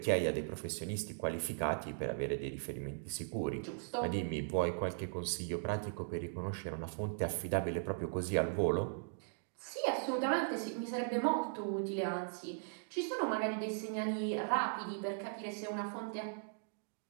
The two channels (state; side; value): silent; left; digital silence